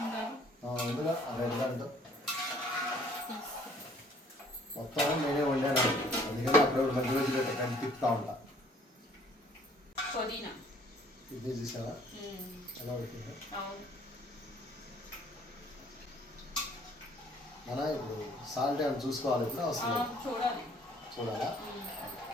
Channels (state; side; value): normal; both; correlation 0.58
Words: ఉండాలి అందులో అరెండు మొత్తం నేనే వండాను. అందుకని అప్పుడు మధ్య మధ్య పెట్టకండి తిప్పుతా ఉంటా. పుదీనా ఇది చూసావా ఎలా పెట్టిందో? మన ఇప్పుడు సాల్ట్ ఏమైనా చూసుకోవాలి. ఇప్పుడు అవసరం చూడాలా?